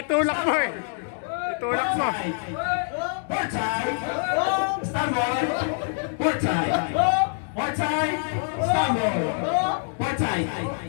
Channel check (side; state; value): right; silent; digital silence